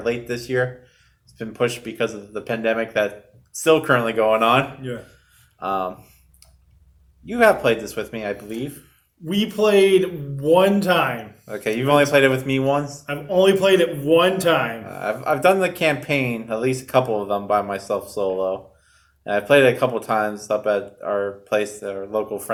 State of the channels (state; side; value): identical; both; correlation 1.00